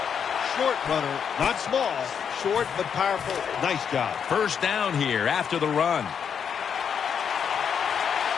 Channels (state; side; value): quieter; right; 7.4 dB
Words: short runner. Not small, short but powerful. Nice job. First down here after the run.